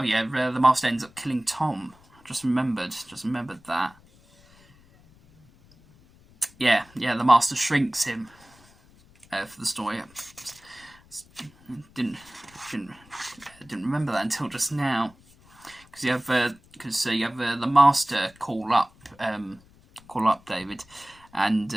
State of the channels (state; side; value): noise; left; rumble, 27 dB below the sound